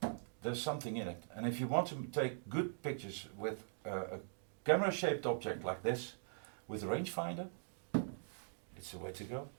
there's something in it. And if you want to take good pictures with a camera-shaped object like this, with a rangefinder, it's the way to go.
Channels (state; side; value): silent; left; digital silence